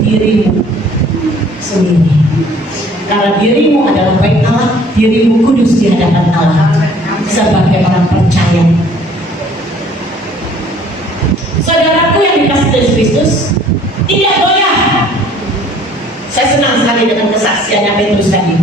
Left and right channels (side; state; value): both; normal; correlation 0.56